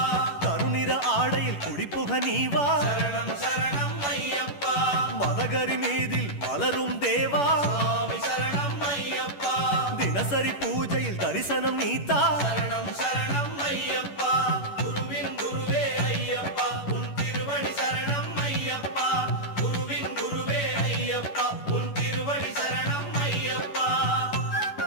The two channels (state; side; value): late; right; 11 ms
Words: கருநிற ஆடையில் குடிப்புக நீவா சரணம் சரணம் ஐயப்பா மதகரி மீதில் மலரும் தேவா சுவாமி சரணம் ஐயப்பா தினசரி பூஜையில் தரிசனம் நீத்தா சரணம் சரணம் ஐயப்பா குருவின் குருவே ஐயப்பா உன் திருவடி சரணம் ஐயப்பா குருவின் குருவே ஐயப்பா உன் திருவடி சரணம் ஐயப்பா